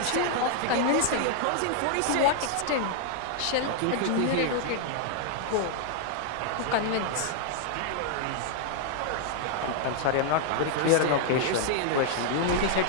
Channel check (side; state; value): both; different; correlation 0.00